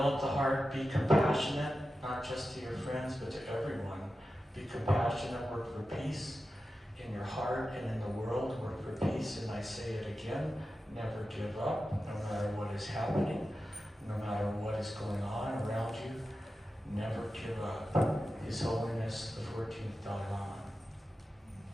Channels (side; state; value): both; normal; correlation 0.92